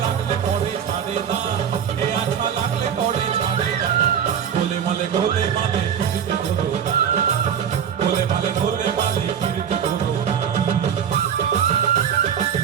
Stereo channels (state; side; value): quieter; left; 8.3 dB